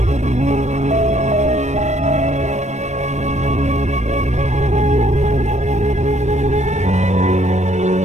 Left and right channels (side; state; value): left; late; 0.34 ms